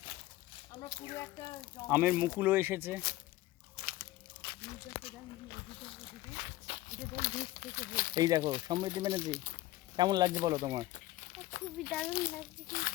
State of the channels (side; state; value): right; quieter; 17.0 dB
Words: আমরা পুরো একটা আমের মুকুলও এসেছে। এই দেখো সমৃদ্ধি ব্যানার্জি, কেমন লাগছে বলো তোমার? খুবই দারুণ লাগছে,